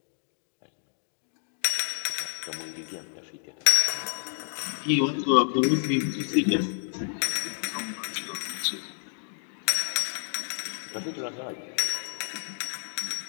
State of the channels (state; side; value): silent; right; digital silence